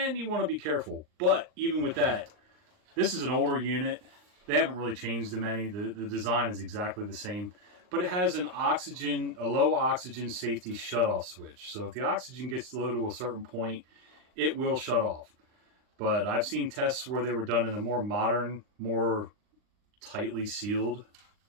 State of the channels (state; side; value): late; left; 39 ms